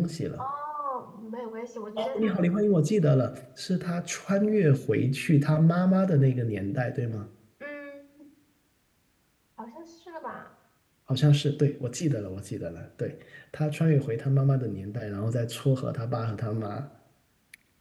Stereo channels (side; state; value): both; identical; correlation 1.00